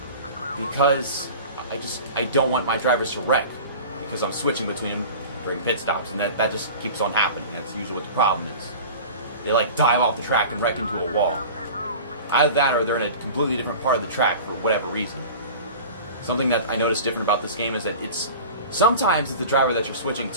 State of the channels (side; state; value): both; inverted; correlation -0.37